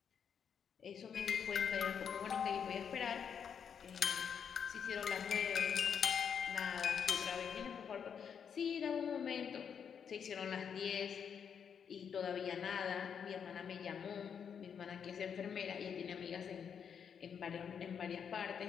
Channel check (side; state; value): right; quieter; 7.4 dB